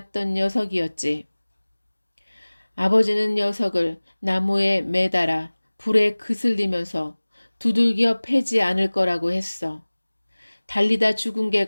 녀석이었지. 아버지는 녀석을 나무에 매달아 불에 그슬리면서 두들겨 패지 않을 거라고 했어. 달리다 죽은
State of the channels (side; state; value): both; inverted; correlation -1.00